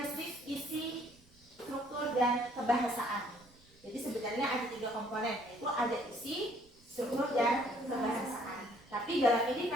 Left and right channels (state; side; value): noise; right; rumble, 28 dB below the sound